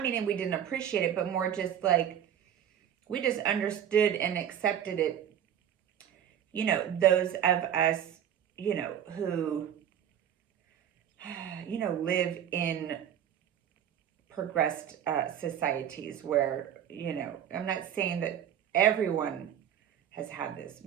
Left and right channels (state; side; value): quieter; left; 9.7 dB